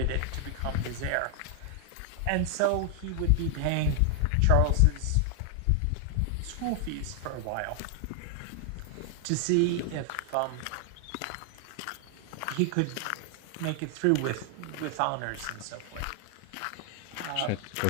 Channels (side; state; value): both; different; correlation 0.00